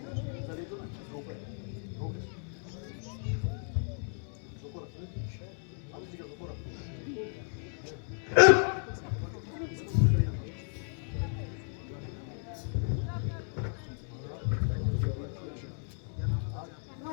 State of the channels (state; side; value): silent; right; 55 dB below the other